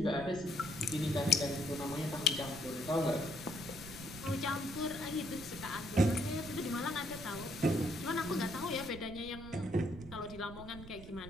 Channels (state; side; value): noise; right; rumble, 14 dB below the sound